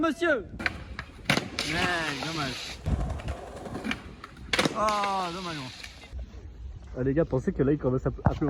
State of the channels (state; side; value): identical; both; correlation 1.00